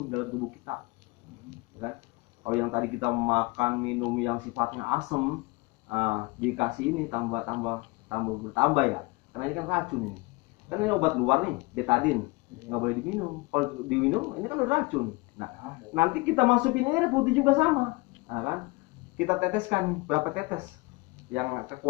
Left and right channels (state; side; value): quieter; right; 25.1 dB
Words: dalam tubuh kita. Kan? Kalau yang tadi kita makan minum yang sifatnya asam, dikasih ini tambah bertambah ya. Karena ini kan racun ini. Kan ini obat luar nih, betadine. Nggak boleh diminum. Kalau diminum ini kan udah racun. Nah, nanti kita masukin air putih juga sama. Nah, kan? Kita teteskan berapa tetes yang